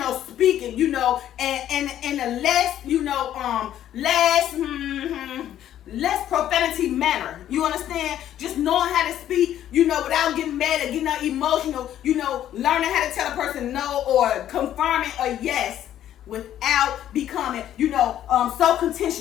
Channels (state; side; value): quieter; right; 11.5 dB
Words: speaking, you know, and a less, you know, less profanity manner. You understand? Just knowing how to speak, you know, without getting mad or getting emotional, you know, learning how to tell a person no or confirming a yes, without becoming, you know, so